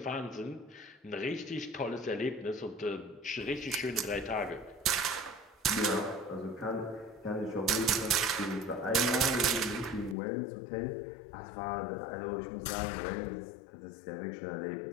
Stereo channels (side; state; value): right; drops out; at 10.2 s